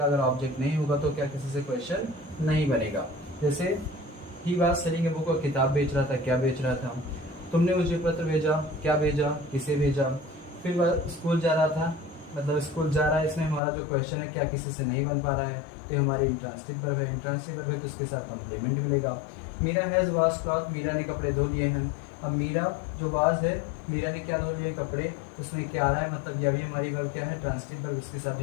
अगर ऑब्जेक्ट नहीं होगा तो क्या किसी से क्वेश्चन नहीं बनेगा। जैसे ही बात सेलिंग ए बुक, और किताब बेच रहा था, क्या बेच रहा था। तुमने मुझे पत्र भेजा, क्या भेजा, किसे भेजा। फिर वह स्कूल जा रहा था, मतलब स्कूल जा रहा है, इसमें हमारा जो क्वेश्चन है क्या किसी से नहीं बन पा रहा है, तो ये हमारी इंट्रांसिटिव वर्ब है। इंट्रांसिटिव वर्ब है तो इसके साथ कम्प्लीमेंट मिलेगा। Meera has wash cloth, Meera ने कपड़े धो लिए हैं। अब मीरा जो वाज है, मीरा ने क्या धो लिए कपड़े, उसमें क्या आ रहा है, मतलब यह भी हमारी वर्ब क्या है, ट्रांसिटिव वर्ब, इसके साथ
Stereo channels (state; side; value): drops out; right; at 13.6 s